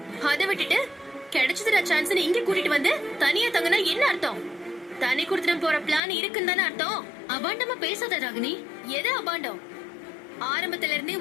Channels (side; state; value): right; drops out; at 6.0 s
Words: அதை விட்டுட்டு கிடைச்சதுடா சான்ஸ் இங்க கூட்டிட்டு வந்து தனியா தங்கினா என்ன அர்த்தம்? தனி கொடுத்துட்டு போற பிளான் இருக்குன்னு தானே அர்த்தம். அபாண்டமா பேசாத ராகினி. எது அபாண்டம்? ஆரம்பத்துல இருந்தே